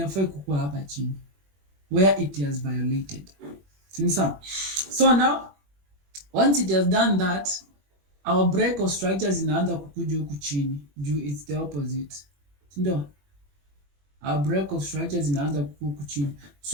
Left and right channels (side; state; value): left; late; 21 ms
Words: kukua hapa chini. Where it has violated. So now, once it has done that, our break of structures inaanza kukuja huku chini. Juu it's the opposite. Ndio. Our break of structure zinaanza huku chini.